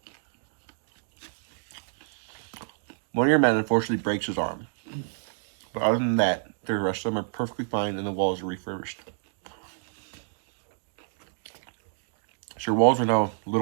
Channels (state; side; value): silent; left; digital silence